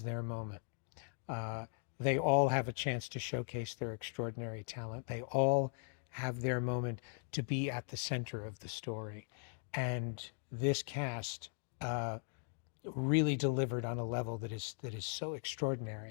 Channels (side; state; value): right; silent; 52 dB below the other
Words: their moment. They all have a chance to showcase their extraordinary talent. They all have their moment to be at the center of the story. And this cast really delivered on a level that is so